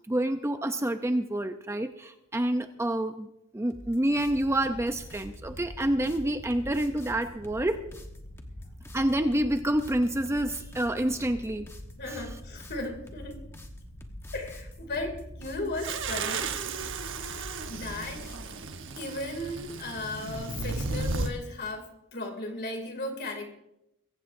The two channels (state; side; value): normal; both; correlation 0.72